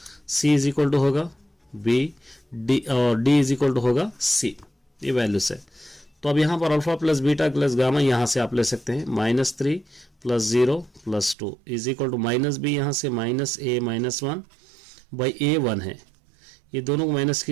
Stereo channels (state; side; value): drops out; left; at 11.4 s